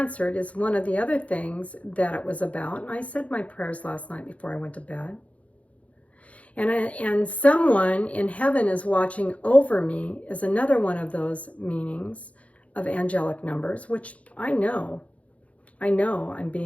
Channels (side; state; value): right; late; 0.065 ms